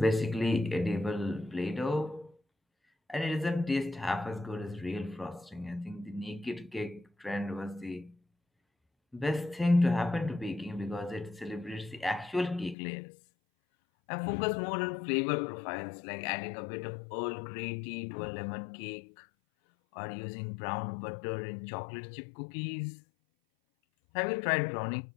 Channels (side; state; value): right; drops out; at 12.8 s